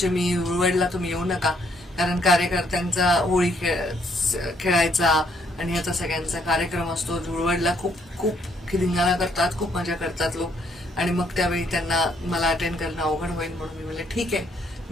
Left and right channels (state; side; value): normal; both; correlation 0.69